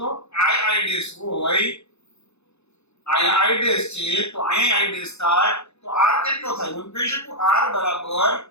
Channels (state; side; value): late; right; 0.80 ms